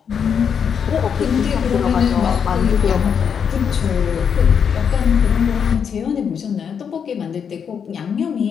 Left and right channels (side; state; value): right; quieter; 7.2 dB